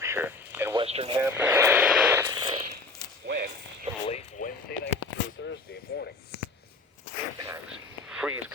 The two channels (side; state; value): right; quieter; 3.4 dB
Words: and Western Hampshire. When? From late Wednesday night through Thursday morning. Impacts. Freeze